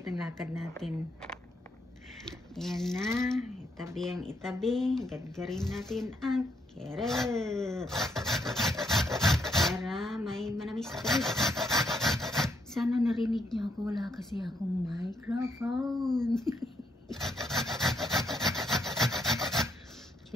ang lakad natin. Ayan na, itabi, gadgarin natin ang carrot para may manamis-tamis. Sana narinig niyo ako, wala kasi akong microphone.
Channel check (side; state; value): both; normal; correlation 0.75